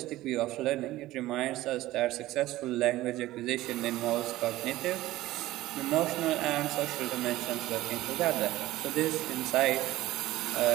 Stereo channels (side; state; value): left; quieter; 16.5 dB